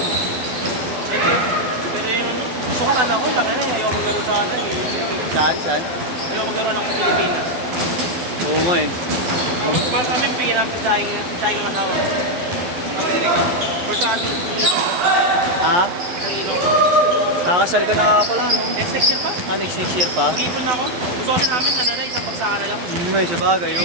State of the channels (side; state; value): left; late; 12 ms